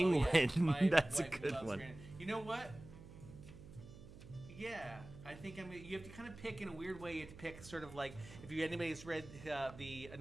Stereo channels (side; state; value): right; noise; hum, 16 dB below the sound